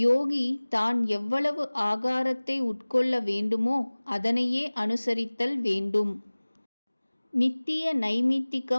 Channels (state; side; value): inverted; both; correlation -1.00